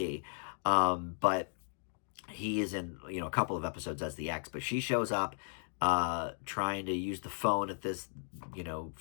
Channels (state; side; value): silent; right; 54 dB below the other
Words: But he is in, a couple of episodes as the ex. But she shows up trying to use the phone at this,